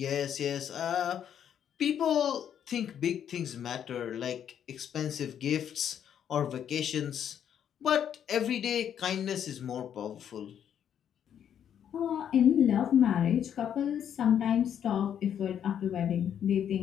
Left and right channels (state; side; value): quieter; right; 9.2 dB